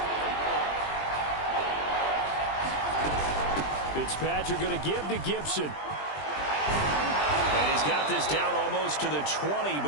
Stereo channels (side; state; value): right; late; 20 ms